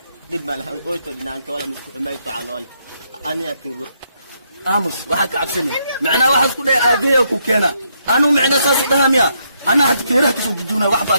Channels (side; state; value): both; inverted; correlation -0.76